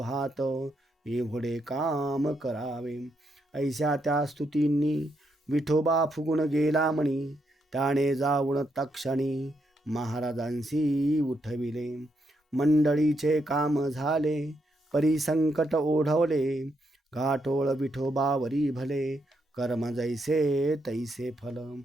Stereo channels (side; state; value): both; normal; correlation 0.79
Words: एवढे काम करावे. ऐशा त्या स्तुतींनी विठोबा फुगून गेला म्हणी त्याने जाऊन तक्षणी महाराजांशी उठविले. मंडळीचे काम झाले परी संकट ओढवले घाटोळ विठोबावरी भले कर्म जैसे तैसे फल.